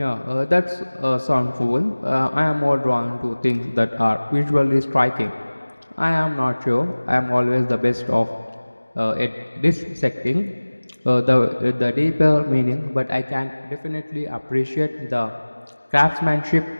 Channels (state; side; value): inverted; both; correlation -1.00